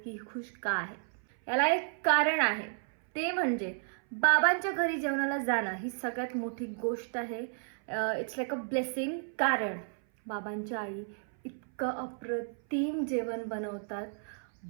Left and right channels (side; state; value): left; silent; 56 dB below the other